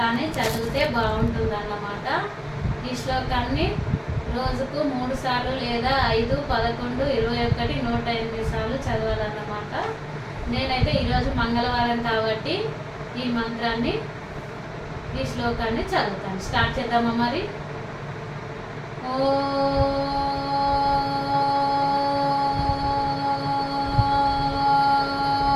చదివితే బాగుంటుందన్నమాట. ఈ శ్లోకాన్ని రోజుకు 3 సార్లు లేదా 5, 11, 21, 108 సార్లు చదవాలన్నమాట. నేనైతే ఈరోజు మంగళవారం కాబట్టి ఈ మంత్రాన్ని, ఈ శ్లోకాన్ని చదువుతాను. స్టార్ట్ చేద్దామా మరి?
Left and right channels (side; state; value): both; identical; correlation 1.00